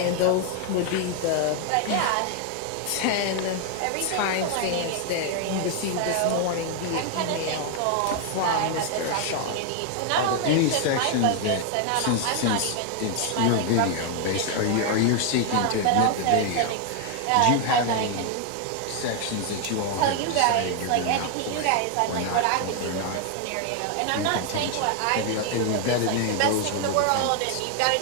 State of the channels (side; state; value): both; different; correlation 0.00